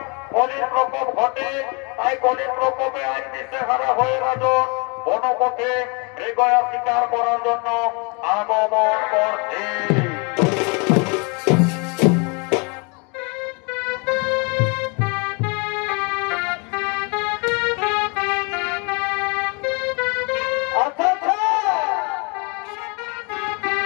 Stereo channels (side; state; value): right; quieter; 32.1 dB